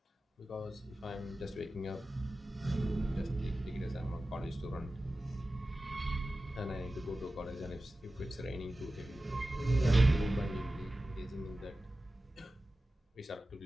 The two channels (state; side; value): normal; both; correlation 0.95